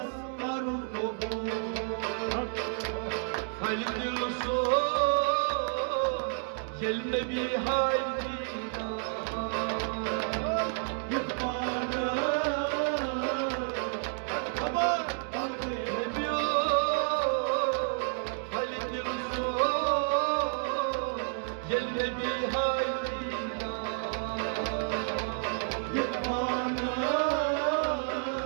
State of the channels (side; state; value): left; silent; 57 dB below the other